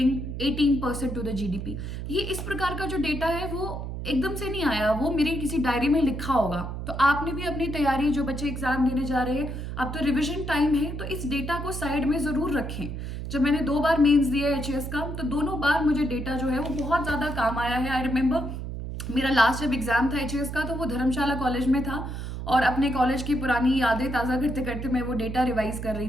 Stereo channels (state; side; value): noise; right; hum, 6 dB below the sound